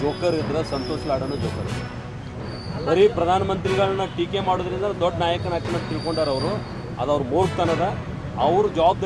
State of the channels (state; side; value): identical; both; correlation 1.00